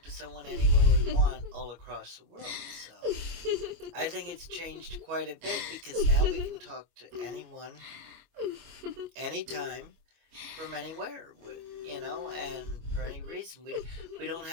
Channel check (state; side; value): late; left; 25 ms